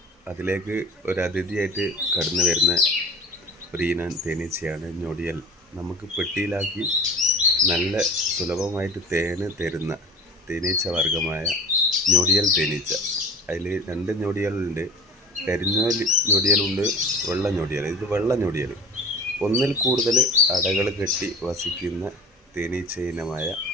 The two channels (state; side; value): normal; both; correlation 0.40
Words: അതിലേക്ക് ഒരു അതിഥിയായിട്ട് കടന്നു വരുന്ന ഒരു ഇനം തേനീച്ചയാണ് ഞൊടിയൽ. നമുക്ക് പെട്ടിയിലാക്കി നല്ല സുലഭമായിട്ട് തേന് തരുന്ന തേനീച്ച വർഗമായ ഞൊടിയൽ തേനീച്ച. അതിൽ രണ്ട് ഞൊടിയലുണ്ട്, കരിഞ്ഞ ഞൊടിയലുണ്ട്, വെള്ള ഞൊടിയൽ. ഇത് വെള്ള ഞൊടിയൽ. ഒന്നിൽ കൂടുതൽ അടകൾ കെട്ടി വസിക്കുന്ന തേനീച്ച ഇനമായ